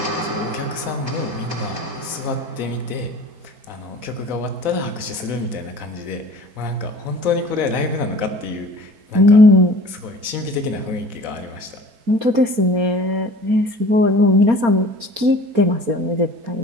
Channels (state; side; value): late; left; 4.3 ms